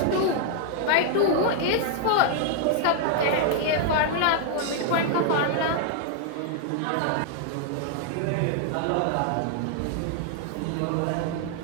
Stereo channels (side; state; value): both; different; correlation 0.00